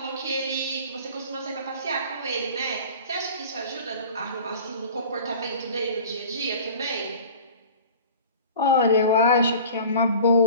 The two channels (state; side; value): inverted; both; correlation -0.42